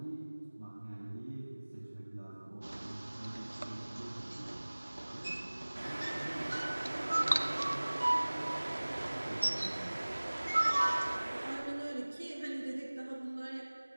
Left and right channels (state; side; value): inverted; both; correlation -1.00